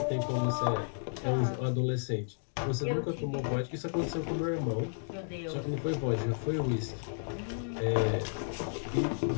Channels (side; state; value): right; silent; digital silence